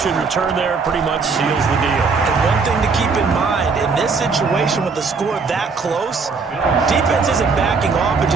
return there pretty much seals the deal. And one thing to keep in mind, in this situation with the score that close, defense isn't backing off and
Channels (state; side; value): quieter; left; 4.7 dB